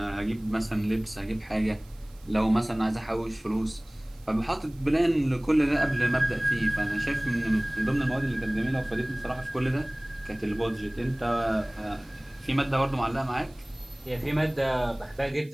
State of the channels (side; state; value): right; noise; hiss, 28 dB below the sound